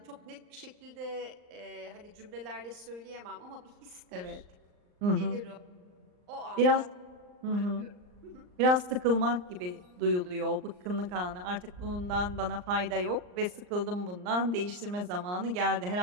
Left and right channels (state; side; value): late; left; 39 ms